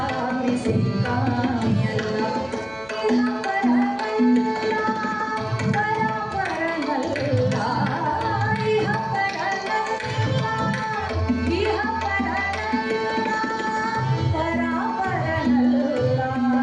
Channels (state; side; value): noise; right; hum, 25 dB below the sound